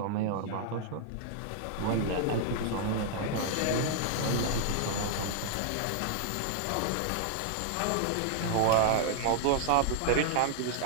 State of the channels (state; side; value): different; both; correlation -0.01